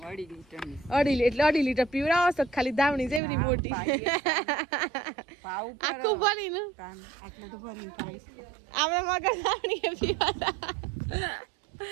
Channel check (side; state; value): left; drops out; at 3.2 s